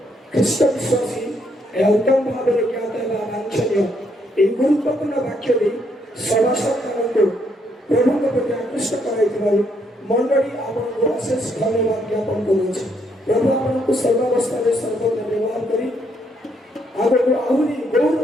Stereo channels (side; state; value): both; normal; correlation 0.73